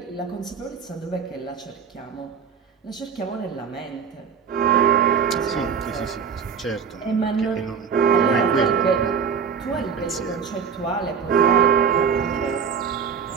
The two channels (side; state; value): left; quieter; 6.6 dB